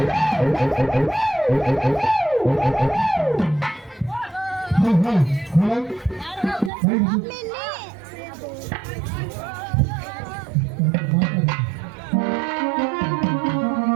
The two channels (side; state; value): left; drops out; at 6.7 s